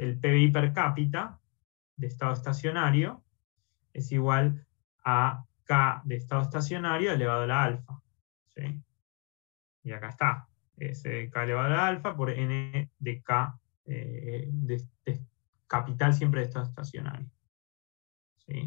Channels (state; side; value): quieter; right; 35.6 dB